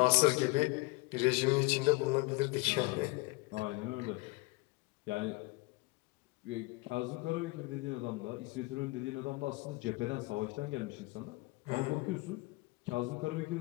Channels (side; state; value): right; quieter; 24.1 dB